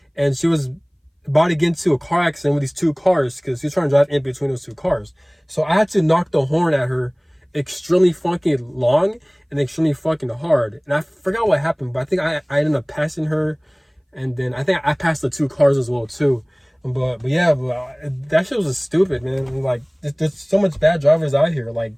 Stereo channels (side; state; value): both; identical; correlation 1.00